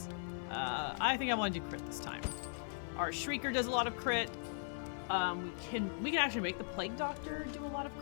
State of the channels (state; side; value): silent; right; 52 dB below the other